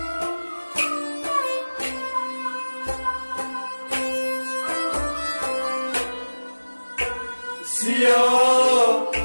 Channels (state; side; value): inverted; both; correlation -1.00